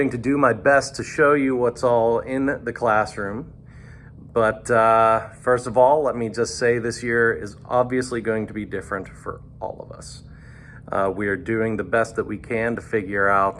to do my best to show you what's all in the classroom. But first of all, let me just say this year is obviously going to be different for all of us. We are doing the best that we can to figure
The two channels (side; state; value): both; identical; correlation 1.00